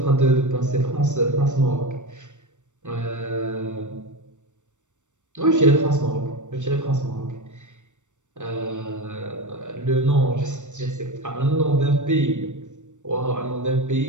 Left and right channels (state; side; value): late; left; 0.85 ms